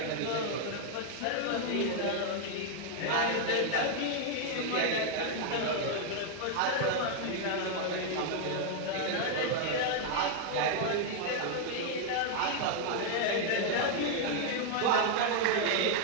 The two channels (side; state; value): both; different; correlation 0.00